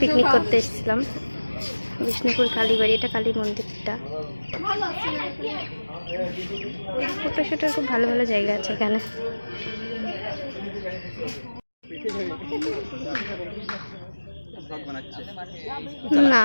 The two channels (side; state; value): both; inverted; correlation -1.00